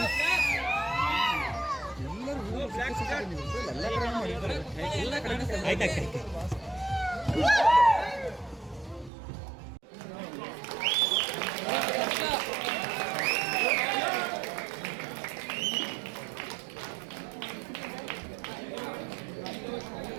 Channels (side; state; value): left; drops out; at 9.1 s